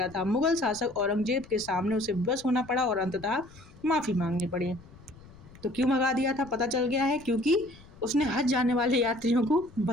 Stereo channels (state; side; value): noise; left; rumble, 22 dB below the sound